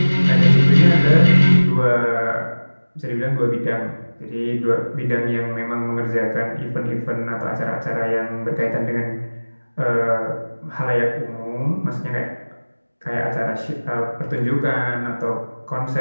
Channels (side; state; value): both; inverted; correlation -1.00